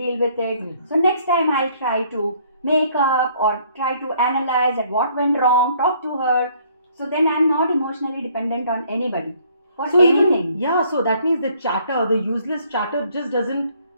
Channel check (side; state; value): both; inverted; correlation -0.63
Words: with it. So next time I'll try to make up or try to analyze at what went wrong, talk to her. So then I'm not emotionally dependent on anybody for anything. So that means the useless chatter just doesn't